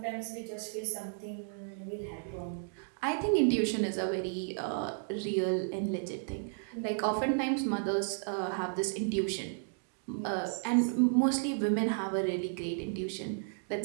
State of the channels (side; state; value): left; silent; digital silence